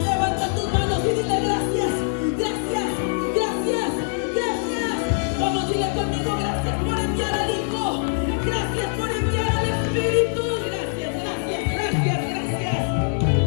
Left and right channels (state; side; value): silent; right; 63 dB below the other